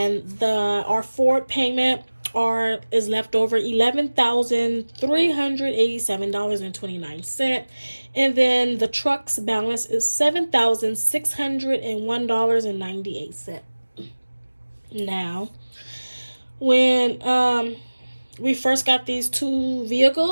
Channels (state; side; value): inverted; both; correlation -1.00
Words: our forward payment is left over $11,387.29, and then the truck's balance is $7,601.98. Now, when we first got these two